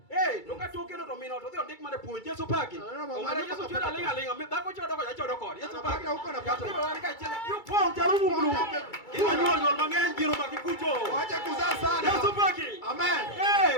Donga tokeno to mino to dhio ndik mane puonj Yeso paki. Ongara Yeso chura lenga. Dhako chodo ko jachodo kod. Yeso paki. Huko na pato. Ibo wani ka chela. Yo pon jarumu mulu. Iwa nyuol mang'eny jiro makikucho. Wacha kuzaa sana. Yeso paki.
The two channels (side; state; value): right; late; 2.3 ms